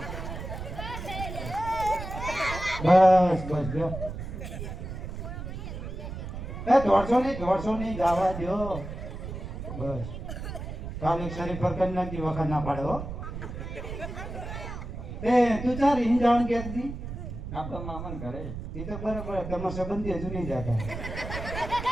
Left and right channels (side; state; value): right; noise; rumble, 8 dB below the sound